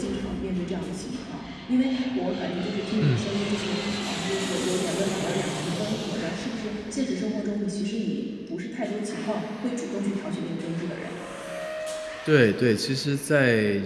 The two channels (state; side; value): identical; both; correlation 1.00